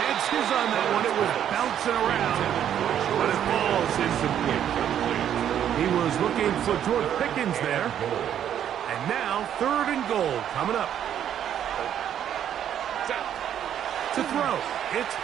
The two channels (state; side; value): quieter; left; 9.9 dB